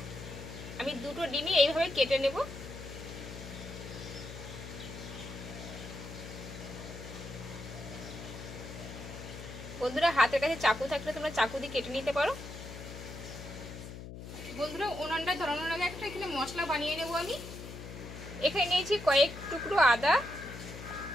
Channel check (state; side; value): noise; left; hum, 11 dB below the sound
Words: আমি দুটো ডিমই এইভাবে কেটে নেব। বন্ধুরা হাতের কাছে চাকু থাকলে তোমরা চাকু দিয়ে কেটে নিতে পারো। বন্ধুরা উনানটা ধরানোর আগে একটা এখানে মশলা বানিয়ে নেব আমি। এখানে নিয়েছি কয়েক টুকরো আদা,